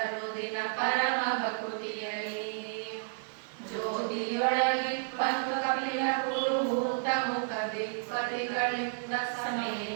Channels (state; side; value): silent; left; digital silence